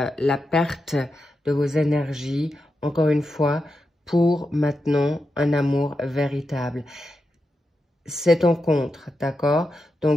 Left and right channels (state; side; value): normal; both; correlation 0.88